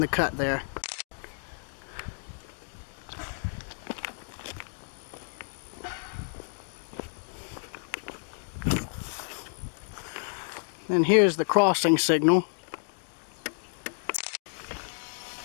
cut there. And here's the crossing signal.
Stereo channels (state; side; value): silent; right; digital silence